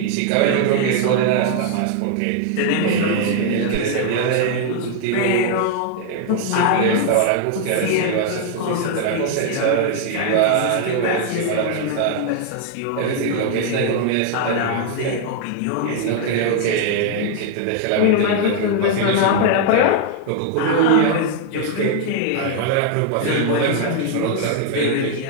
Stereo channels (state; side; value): different; both; correlation 0.00